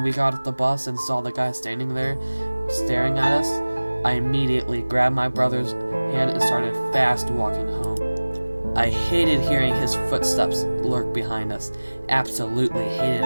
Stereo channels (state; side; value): inverted; both; correlation -1.00